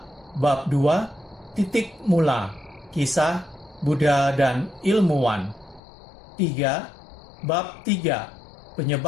Bab 2, titik mula, kisah Buddha dan ilmuwan. 3. Bab 3,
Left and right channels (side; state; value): right; drops out; at 5.8 s